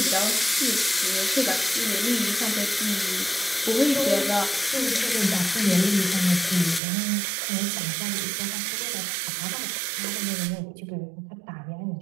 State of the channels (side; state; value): left; drops out; at 6.8 s